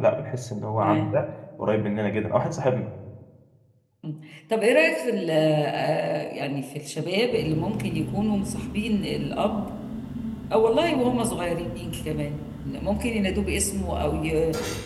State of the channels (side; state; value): both; identical; correlation 1.00